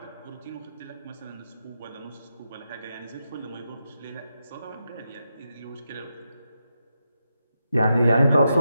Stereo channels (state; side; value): inverted; both; correlation -0.86